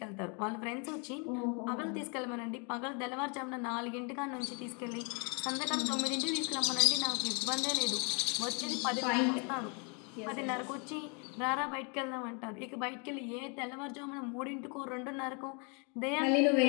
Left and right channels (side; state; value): right; quieter; 35.1 dB